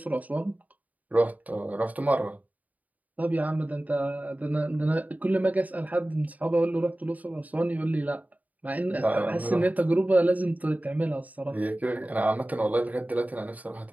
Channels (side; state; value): left; late; 0.075 ms